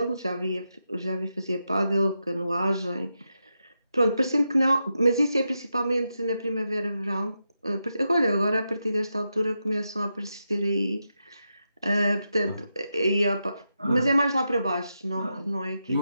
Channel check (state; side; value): inverted; both; correlation -0.87